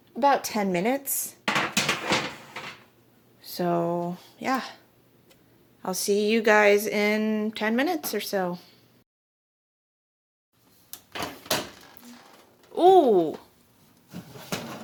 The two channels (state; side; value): identical; both; correlation 1.00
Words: about 10 minutes. So, yeah. I'll see you guys in 10 minutes or so. Ooh!